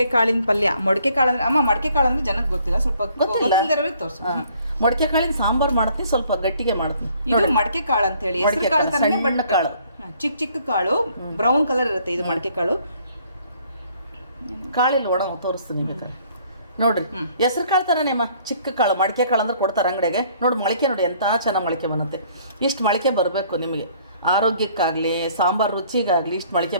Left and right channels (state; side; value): inverted; both; correlation -0.61